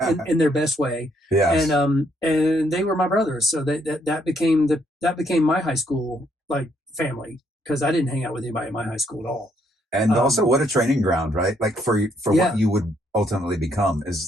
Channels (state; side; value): normal; both; correlation 0.71